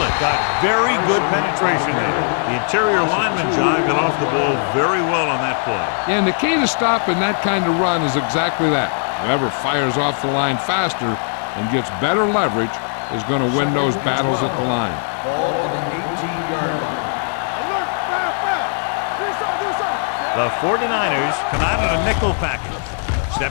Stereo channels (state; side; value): silent; right; digital silence